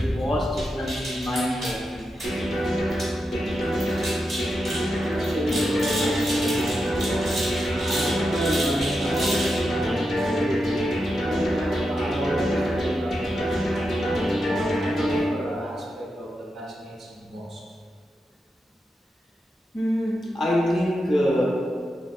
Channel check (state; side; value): normal; both; correlation 0.87